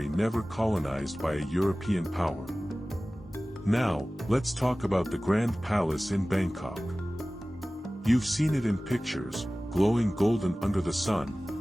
never colonized by a European power. Now, let's talk about the Grand Palace in Bangkok. You've seen it in pictures, glowing golden under the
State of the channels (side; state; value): both; normal; correlation 0.97